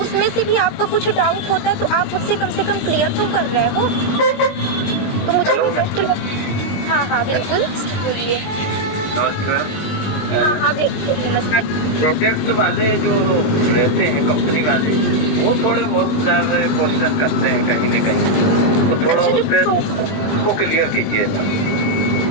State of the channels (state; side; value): late; right; 20 ms